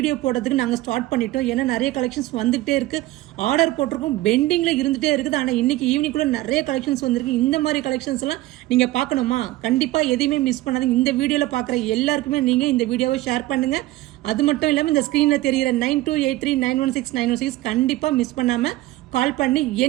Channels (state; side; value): quieter; left; 17.1 dB